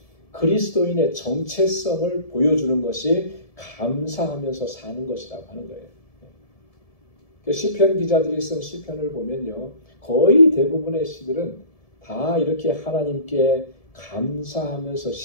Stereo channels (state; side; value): late; right; 1.7 ms